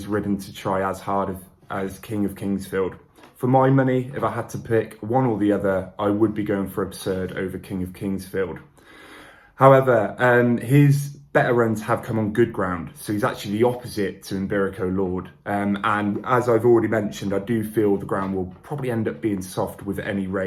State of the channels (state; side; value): identical; both; correlation 1.00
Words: ridden to try as hard as King of Kingsfield. For my money, if I had to pick one or the other, I would be going for Absurd over King of Kingsfield. However, his better runs have come on good ground, so he's actually the opposite to Imberico Lord. And as I've already mentioned, I do feel the ground will probably end up being soft with any